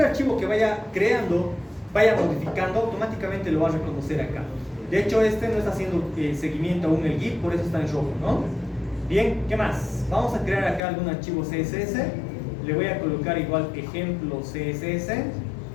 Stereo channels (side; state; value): right; drops out; at 10.8 s